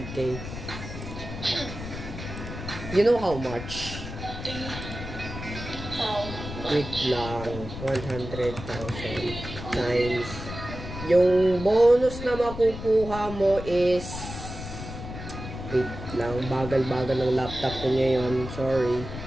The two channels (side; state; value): left; noise; rumble, 9 dB below the sound